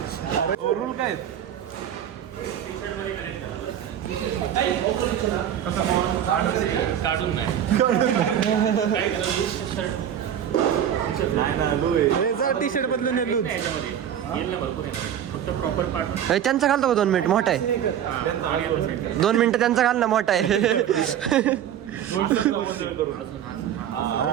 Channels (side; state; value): left; quieter; 9.9 dB